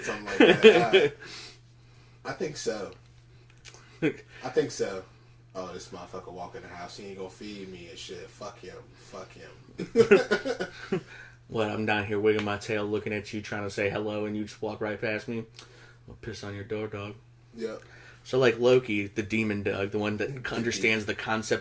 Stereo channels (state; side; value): identical; both; correlation 1.00